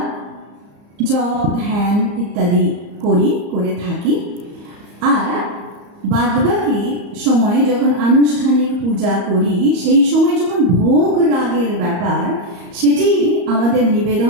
জপ ধ্যান ইত্যাদি করে থাকি। আর বাদবাকি সময়ে যখন আনুষ্ঠানিক পূজা করি, সেই সময় যখন ভোগ রাগের ব্যাপার, সেটি আমাদের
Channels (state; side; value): late; left; 34 ms